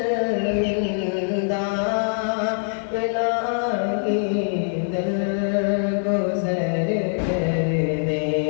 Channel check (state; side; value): silent; right; 62 dB below the other